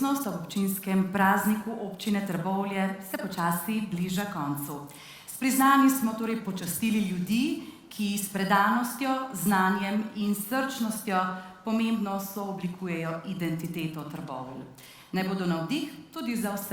ob občinskem prazniku občine Trbovlje se počasi bliža koncu. S priznanji smo torej počastili ljudi, ki s predanostjo, znanjem in srčnostjo pomembno sooblikujejo identiteto Trbovelj. Naj bodo navdih tudi za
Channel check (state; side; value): identical; both; correlation 1.00